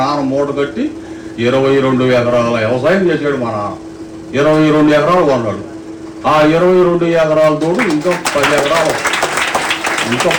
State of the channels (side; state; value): both; identical; correlation 1.00